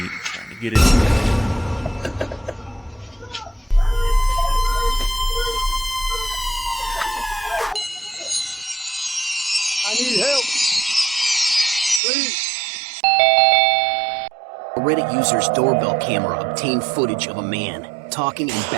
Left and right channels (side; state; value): left; drops out; at 12.0 s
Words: trying to get in. I need help. Please. A Reddit user's doorbell camera obtained footage of a man talking and